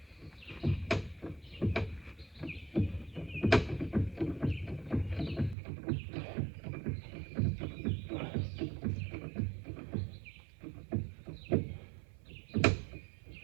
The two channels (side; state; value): left; drops out; at 5.6 s